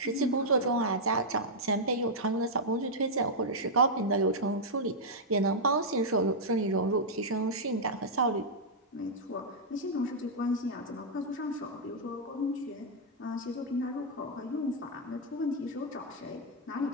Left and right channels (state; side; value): normal; both; correlation -0.06